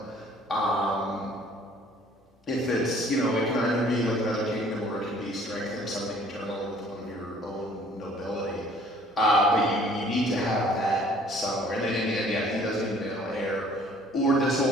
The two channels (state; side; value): normal; both; correlation 0.56